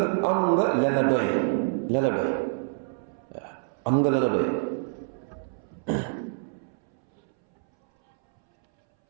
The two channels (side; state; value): left; silent; 60 dB below the other